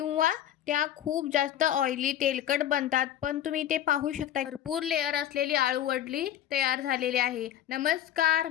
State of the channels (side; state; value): right; quieter; 11.5 dB